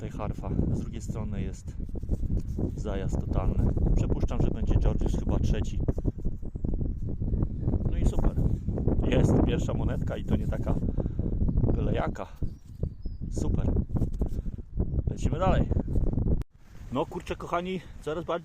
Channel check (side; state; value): both; identical; correlation 1.00